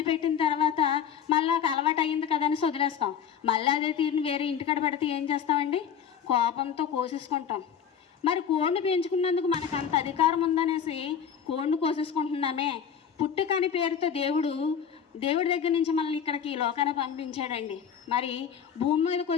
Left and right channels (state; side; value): quieter; right; 8.0 dB